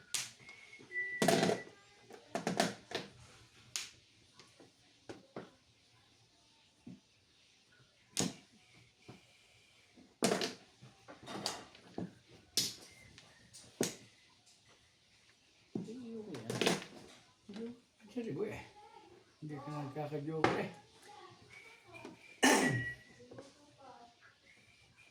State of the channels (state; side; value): identical; both; correlation 1.00